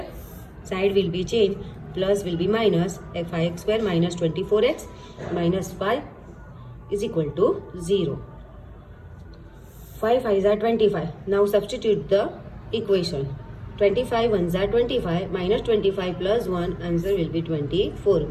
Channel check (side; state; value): both; identical; correlation 1.00